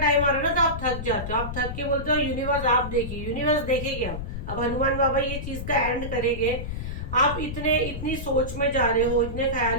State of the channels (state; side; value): noise; left; rumble, 6 dB below the sound